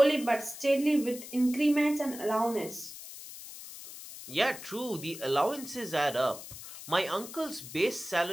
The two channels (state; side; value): noise; left; hiss, 13 dB below the sound